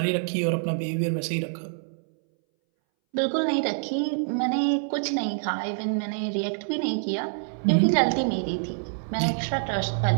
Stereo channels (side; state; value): left; silent; 61 dB below the other